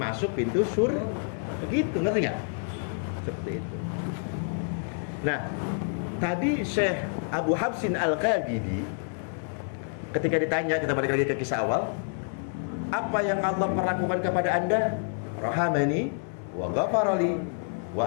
pintu surga. Begitu, ngerti nggak? Seperti itu. Nah tadi Syekh Abu Habsin Al-Qabidi ketika ditanya, kita balik lagi ke kisah awal, apa yang Allah perlakukan kepada anda? Rahamani wa ghafarali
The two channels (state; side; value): silent; right; 59 dB below the other